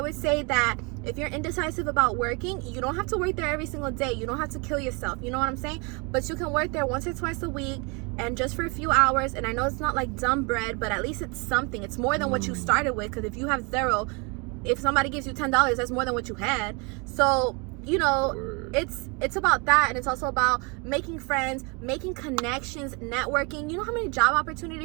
would say that if you're indecisive about working, you don't have to work there every single day. You don't have to kill yourself. You know what I'm saying? But you can work there once or twice a week, and just for a few hours. And I know it's not like dumb bread, but at least it's something. It's more than what you started with, because if you have $0, if somebody gives you $10, that's more than what you had. So, you know, it's about that, and it's also about making friends, making connections, networking. You know how many job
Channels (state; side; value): quieter; left; 30.9 dB